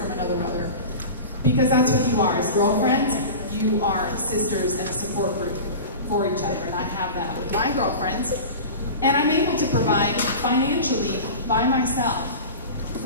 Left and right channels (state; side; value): inverted; both; correlation -0.32